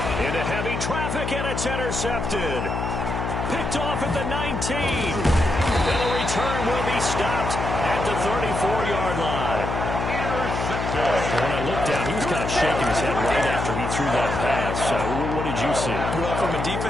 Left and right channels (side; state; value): left; noise; hum, 3 dB below the sound